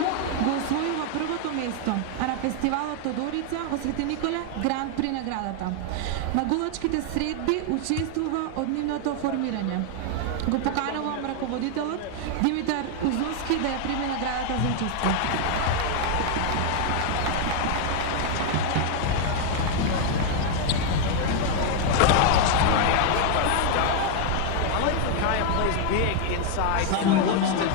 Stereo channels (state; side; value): different; both; correlation 0.00